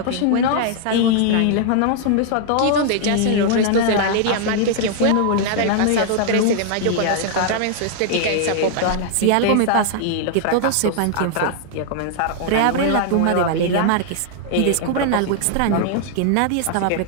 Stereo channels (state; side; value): different; both; correlation -0.01